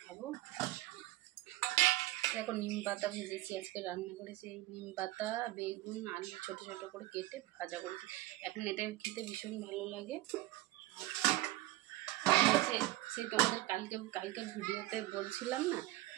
খাবো। দেখো নিম পাতা ভেজেছি, আজকে রান্না করেছি এই নিম পাতা, বেগুন, আলু ছোট ছোট করে কেটে ভাজা করেছি। এখন এটা খেতে ভীষণ ভালো লাগে। সেই তোমাদের কালকের ভিডিওতে বলছিলাম না,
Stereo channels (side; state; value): left; quieter; 17.6 dB